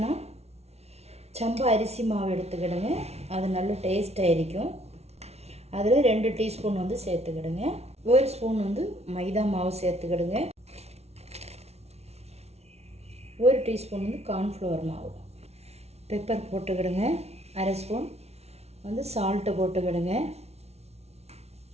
சம்பா அரிசி மாவு எடுத்துக்கிடுங்க, அது நல்ல டேஸ்ட்டாக இருக்கும். அதில் 2 டீஸ்பூன் வந்து சேர்த்துக்கிடுங்க. 1 ஸ்பூன் வந்து மைதா மாவு சேர்த்துக்கிடுங்க. 1 டீஸ்பூன் வந்து கார்ன்ஃப்ளவர் மாவு. பெப்பர் போட்டுக்கிடுங்க. 1/2 ஸ்பூன் வந்து சால்ட்டு போட்டுக்கிடுங்க.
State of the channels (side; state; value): left; late; 0.31 ms